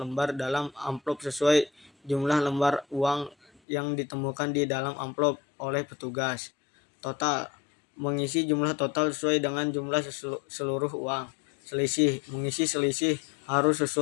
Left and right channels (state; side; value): drops out; right; at 3.6 s